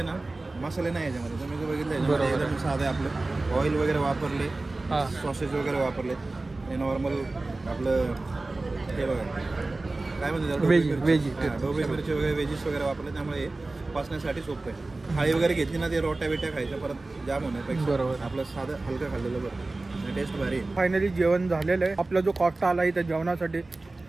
ना मसाले नाही याच्यामध्ये. तुम्ही जो बघितलं एकदम साधं आहे. आपलं ऑइल वगैरे वापरले, हां सॉसेस वगैरे वापरले. हे नॉर्मल आपलं हे बघा काय म्हणतात ढोबळी मिरची वगैरे व्हेजीस वगैरे वापरले, त्यामुळे हे पचण्यासाठी सोपं आहे. थाळी वगैरे घेतली ना ते रोट्या बिट्या खायच्या परत जाम होण्यापेक्षा बरोबर आपलं साधं हलकं खाल्लेलं बरं. टेस्ट भारी आहे. फायनली जेवण झालेलं आहे. आपला जो कॉस्ट आला इथं जेवणासाठी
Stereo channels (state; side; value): quieter; left; 3.2 dB